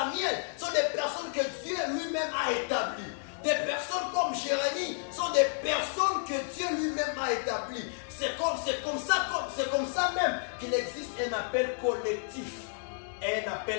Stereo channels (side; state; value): right; silent; digital silence